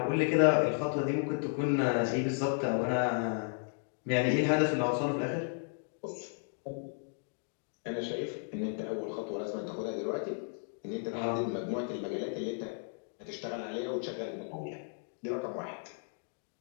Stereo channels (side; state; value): right; silent; 55 dB below the other